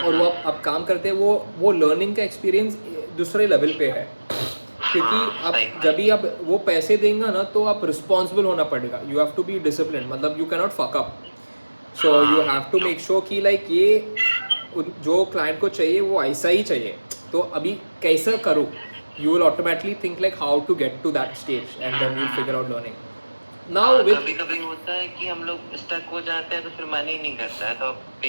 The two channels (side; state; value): both; inverted; correlation -1.00